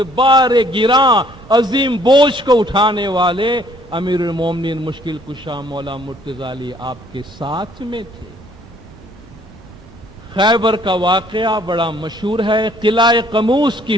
بار گراں عظیم بوجھ کو اٹھانے والے امیر المومنین مشکل کشا مولا مرتضی علی آپ کے ساتھ میں تھے. خیبر کا واقعہ بڑا مشہور ہے. قلعہ قموس کی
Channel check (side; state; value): both; normal; correlation 0.61